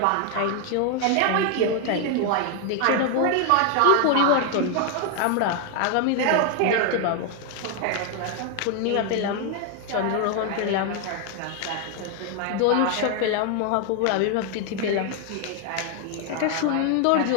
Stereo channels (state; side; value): different; both; correlation 0.01